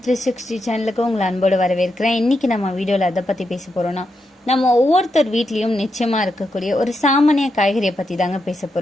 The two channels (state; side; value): normal; both; correlation 0.84